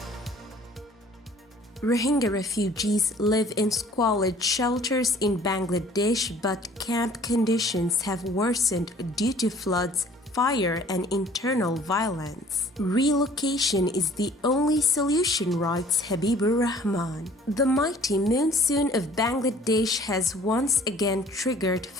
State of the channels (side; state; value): both; normal; correlation 0.53